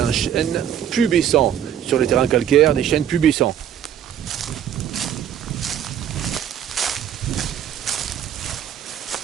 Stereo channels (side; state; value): left; quieter; 9.8 dB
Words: chêne pubescent sur les terrains calcaires, des chênes pubescents.